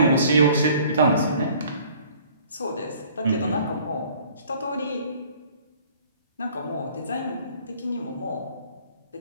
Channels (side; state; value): both; inverted; correlation -0.54